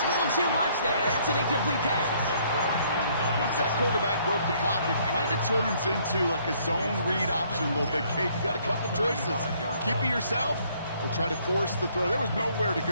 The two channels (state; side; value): inverted; both; correlation -0.64